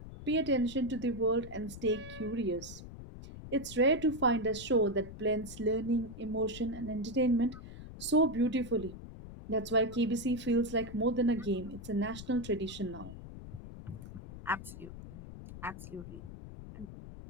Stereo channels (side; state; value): left; noise; rumble, 13 dB below the sound